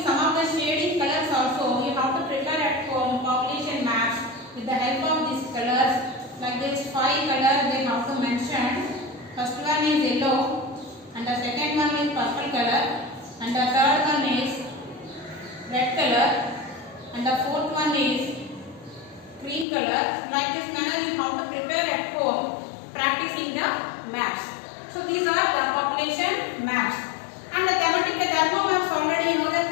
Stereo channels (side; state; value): right; drops out; at 19.7 s